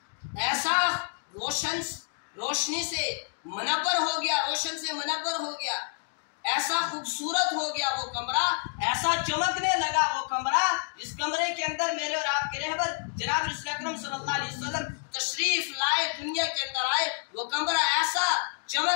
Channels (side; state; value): right; silent; 56 dB below the other